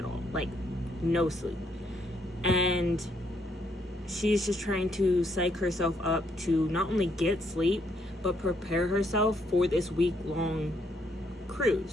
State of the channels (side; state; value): both; normal; correlation 0.72